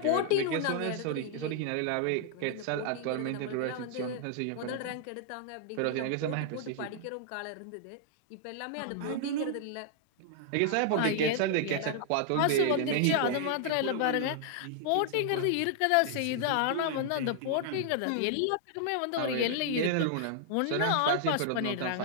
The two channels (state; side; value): different; both; correlation -0.01